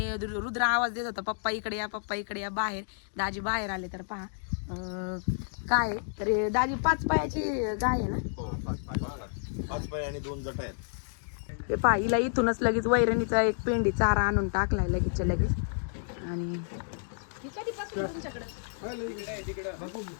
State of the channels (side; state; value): right; silent; digital silence